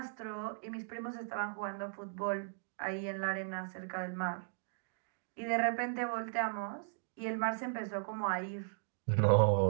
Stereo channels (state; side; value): silent; left; digital silence